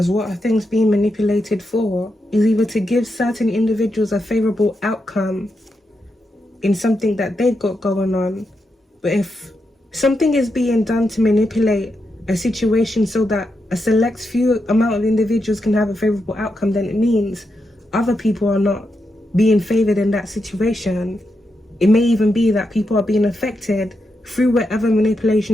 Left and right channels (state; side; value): normal; both; correlation 0.85